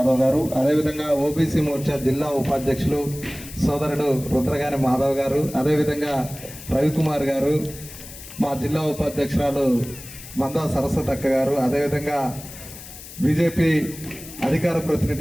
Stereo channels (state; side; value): noise; left; hiss, 15 dB below the sound